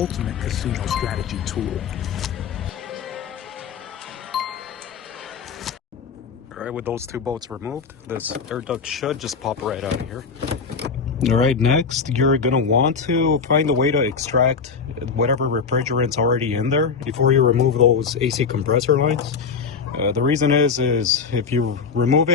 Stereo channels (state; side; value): quieter; right; 5.6 dB